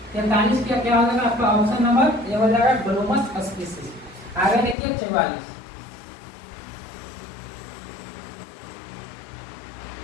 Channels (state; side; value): drops out; right; at 4.8 s